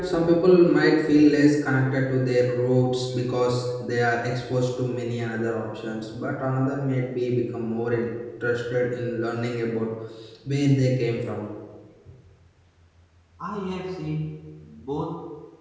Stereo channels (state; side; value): identical; both; correlation 1.00